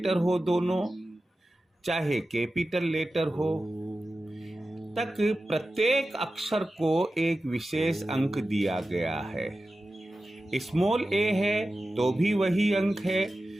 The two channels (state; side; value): normal; both; correlation 0.94